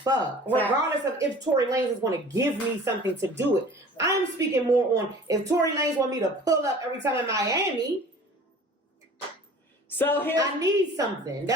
Regardless of if Tory Lanez is going to give me something to do it. I'm speaking more on if Tory Lanez want me to pull up every time in Miami. So here, I need something.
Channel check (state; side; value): normal; both; correlation 0.45